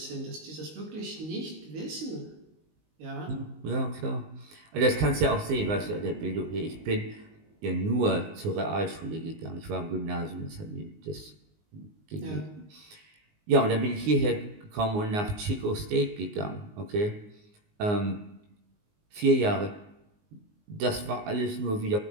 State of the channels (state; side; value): late; left; 19 ms